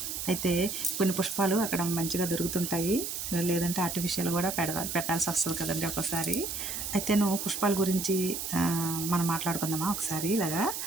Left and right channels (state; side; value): noise; right; hiss, 4 dB below the sound